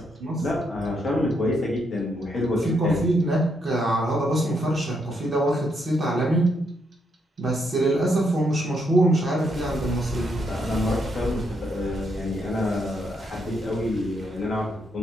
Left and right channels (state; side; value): normal; both; correlation 0.77